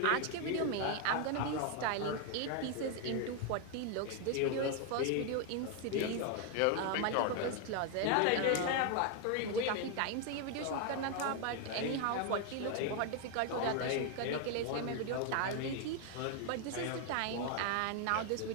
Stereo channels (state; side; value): different; both; correlation 0.01